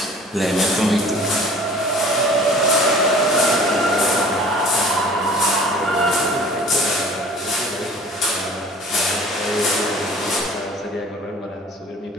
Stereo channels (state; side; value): normal; both; correlation 0.47